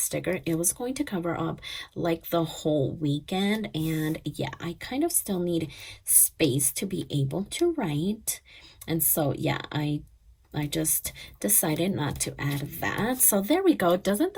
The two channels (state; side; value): identical; both; correlation 1.00